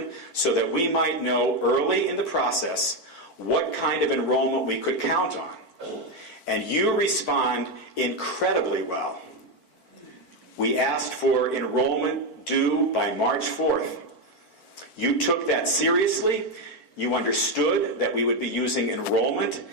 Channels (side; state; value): right; late; 4.5 ms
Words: so that we might know early in the process what kind of enrollment we could count on. And you respond incredibly well. We asked for enrollment due by March 4th. You took that seriously. You understood that we would be using enrollment